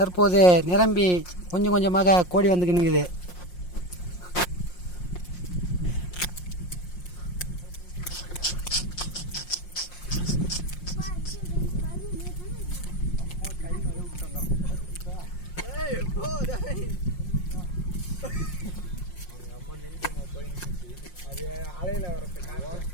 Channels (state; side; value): late; right; 5.6 ms